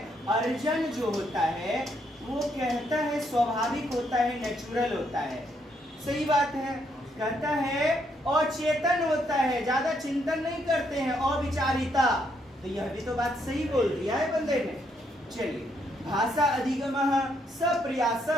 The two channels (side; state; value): both; normal; correlation 0.74